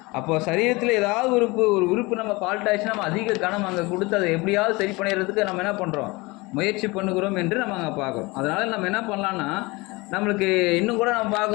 அப்போ சரீரத்தில் ஏதாவது ஒரு உறுப்பு நம்ம ஃபால்ட் ஆயிடுச்சுன்னா நம்ம அதிக கனம் அங்கே கொடுத்து அதை எப்படியாவது சரி பண்ணிடுறதுக்கு நம்ம என்ன பண்ணுறோம், முயற்சி பண்ணுகிறோம் என்று நம்ம அங்கே பார்க்குறோம். அதனால் நம்ம என்ன பண்ணலான்னா, நம்மளுக்கு இன்னும் கூட நம்ம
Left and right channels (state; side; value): quieter; right; 24.0 dB